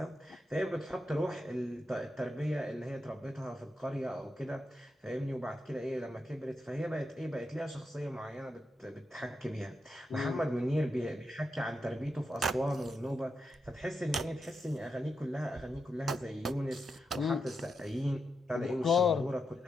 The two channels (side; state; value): both; normal; correlation 0.86